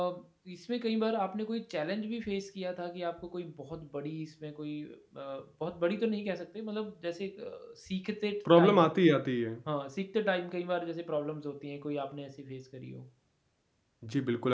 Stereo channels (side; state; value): both; identical; correlation 1.00